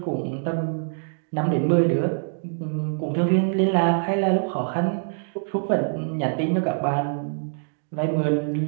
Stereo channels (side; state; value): left; silent; digital silence